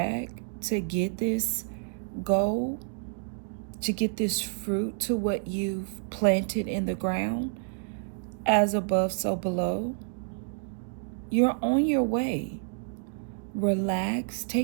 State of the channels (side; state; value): left; silent; digital silence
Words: to get this goal, to get this fruit to what you've planted in the ground. As above, so below. You're on your way. Relax.